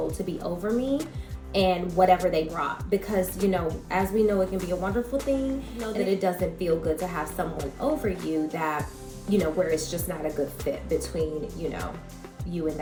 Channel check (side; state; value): both; identical; correlation 1.00